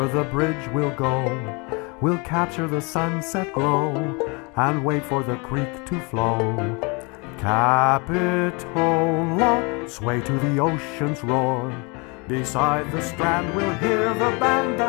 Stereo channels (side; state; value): right; quieter; 30.2 dB